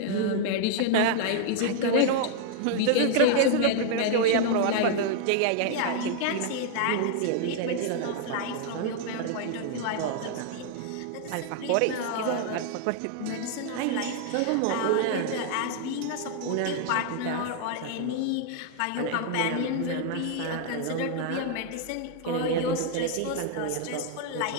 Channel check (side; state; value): both; different; correlation 0.00